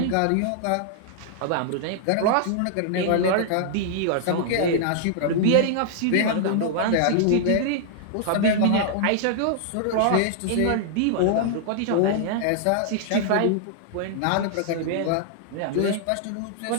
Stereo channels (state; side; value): different; both; correlation -0.01